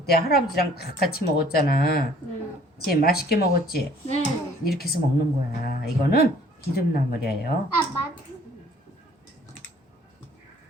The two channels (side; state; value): both; normal; correlation 0.56